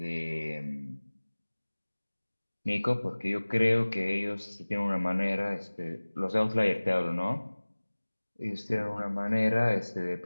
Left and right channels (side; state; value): both; inverted; correlation -1.00